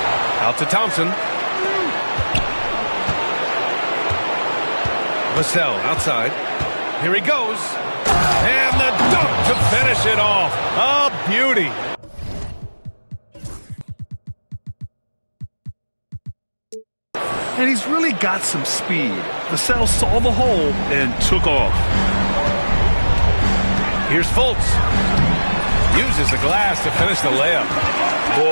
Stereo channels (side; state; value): both; inverted; correlation -1.00